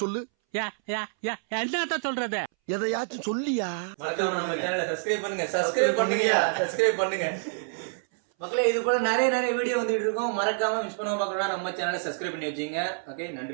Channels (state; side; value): silent; left; 60 dB below the other